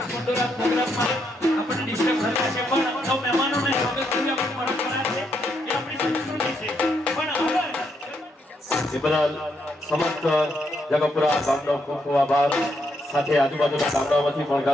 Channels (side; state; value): both; normal; correlation 0.77